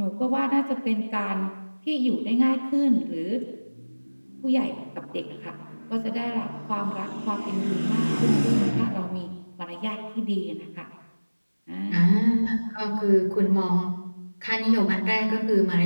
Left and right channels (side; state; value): both; inverted; correlation -1.00